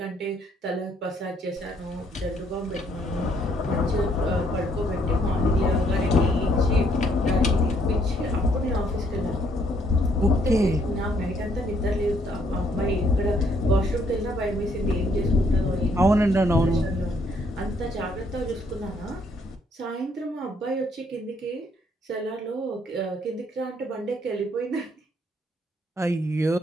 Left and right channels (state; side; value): normal; both; correlation 0.68